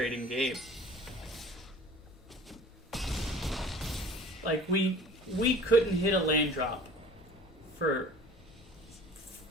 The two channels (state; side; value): normal; both; correlation 0.44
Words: game. Like, we couldn't hit a land drop for